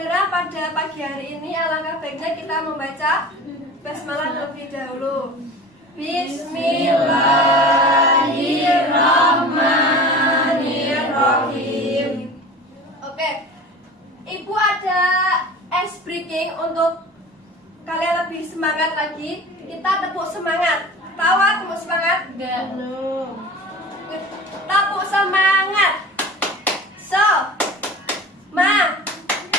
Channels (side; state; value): both; normal; correlation 0.38